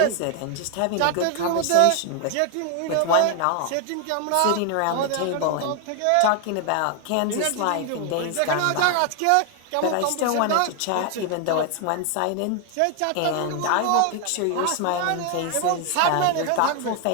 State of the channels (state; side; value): different; both; correlation 0.00